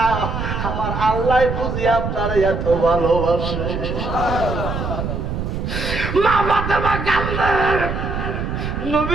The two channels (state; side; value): noise; right; rumble, 4 dB below the sound